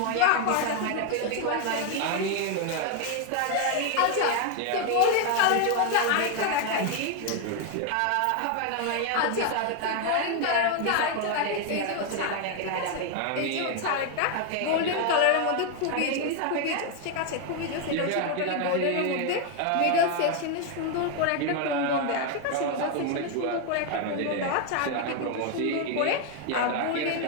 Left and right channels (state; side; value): different; both; correlation 0.01